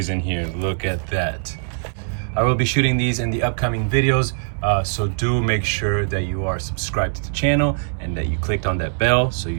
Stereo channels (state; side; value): silent; left; 65 dB below the other